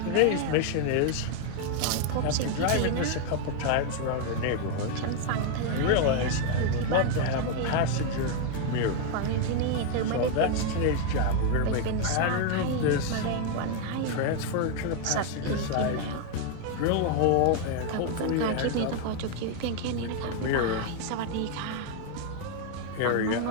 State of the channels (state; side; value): different; both; correlation 0.00